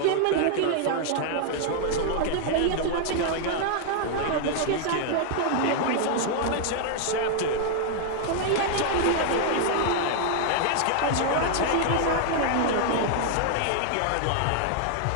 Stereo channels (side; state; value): both; different; correlation 0.00